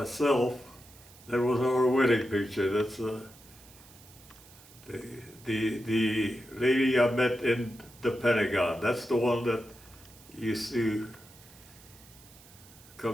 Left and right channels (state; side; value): noise; right; hiss, 23 dB below the sound